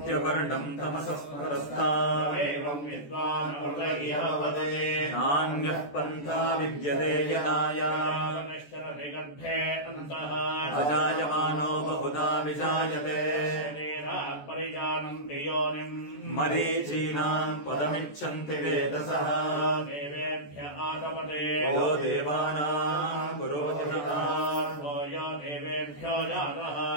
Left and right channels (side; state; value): right; late; 14 ms